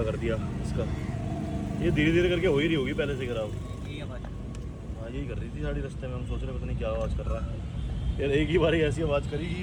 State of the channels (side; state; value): both; identical; correlation 1.00